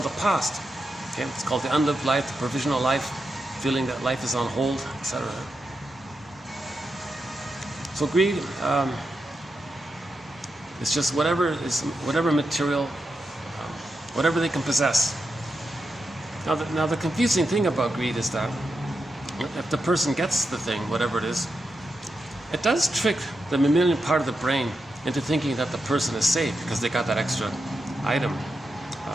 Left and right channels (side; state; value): both; normal; correlation 0.87